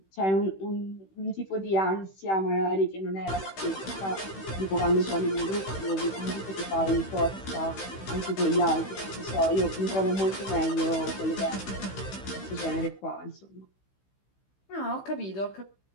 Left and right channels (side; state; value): right; late; 16 ms